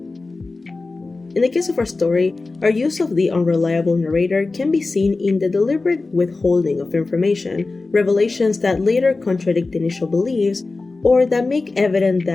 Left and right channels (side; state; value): right; quieter; 3.6 dB